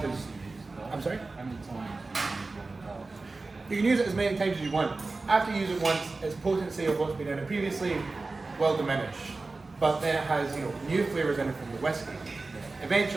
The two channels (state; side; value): quieter; left; 3.6 dB